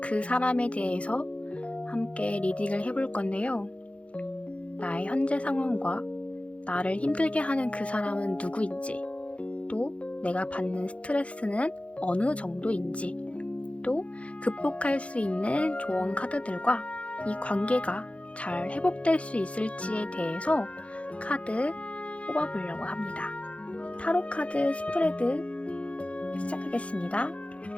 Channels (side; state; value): right; late; 0.062 ms